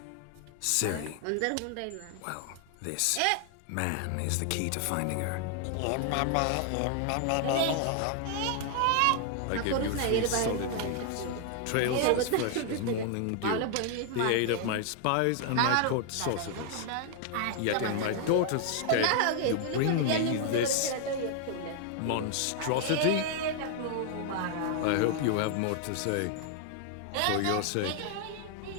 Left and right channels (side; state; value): both; different; correlation 0.00